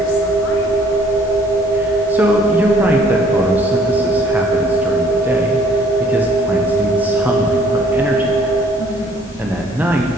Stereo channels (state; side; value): normal; both; correlation 0.60